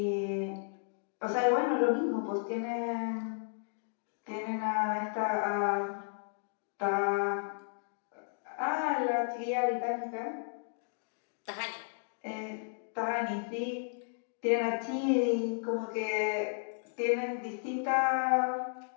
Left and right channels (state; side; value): silent; right; digital silence